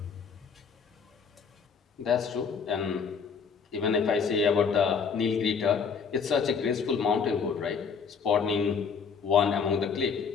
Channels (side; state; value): right; quieter; 6.0 dB